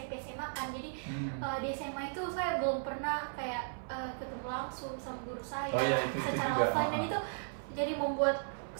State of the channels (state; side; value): silent; left; 54 dB below the other